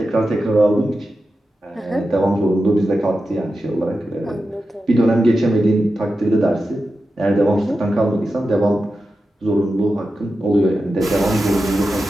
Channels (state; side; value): normal; both; correlation 0.91